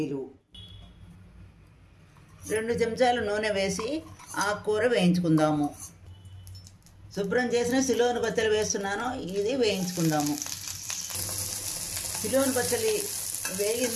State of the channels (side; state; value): both; identical; correlation 1.00